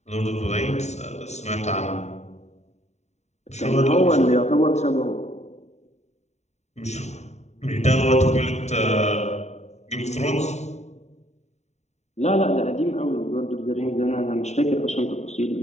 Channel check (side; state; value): right; late; 0.32 ms